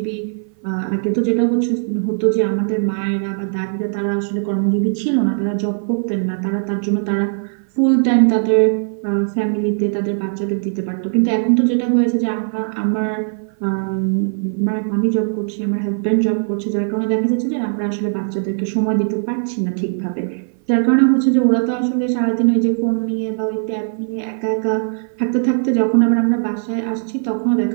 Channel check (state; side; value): silent; left; 58 dB below the other